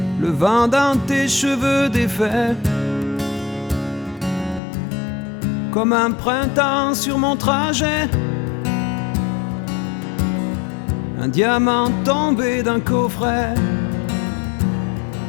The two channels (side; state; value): right; drops out; at 4.6 s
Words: Le vent dans tes cheveux défaits, comme un printemps sur mon trajet. Un diamant tombé d'un coffret.